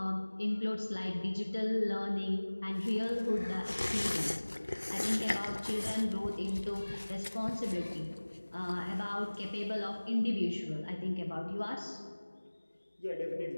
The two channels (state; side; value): inverted; both; correlation -1.00